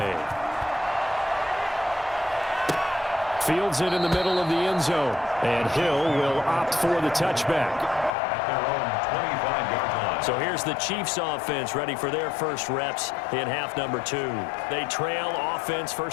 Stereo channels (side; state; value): right; drops out; at 8.1 s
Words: Fields it in the middle of the end zone. And Hill will opt for the touchback. At their own 25-yard line. So here's the Chiefs offense ready for their first reps in half number 2. They trail offense,